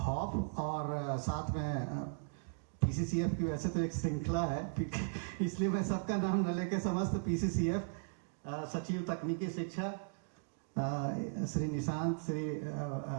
और साथ में पीसीसीएफ की वैसे तो एक श्रृंखला है, इसलिए मैं सबका नाम न लेके समस्त पीसीसीएफ सचिव तकनीकी शिक्षा श्री निशांत, श्री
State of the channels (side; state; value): left; silent; digital silence